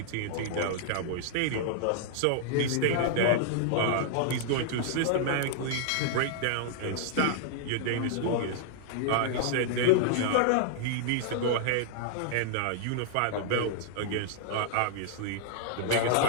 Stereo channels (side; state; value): both; different; correlation -0.01